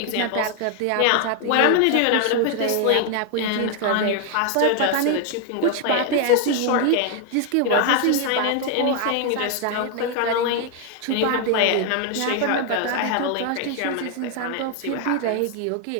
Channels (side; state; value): both; different; correlation 0.00